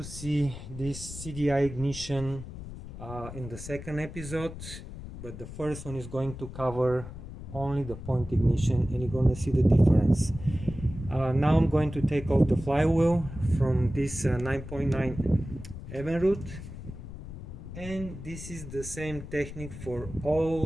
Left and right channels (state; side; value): noise; left; rumble, 11 dB below the sound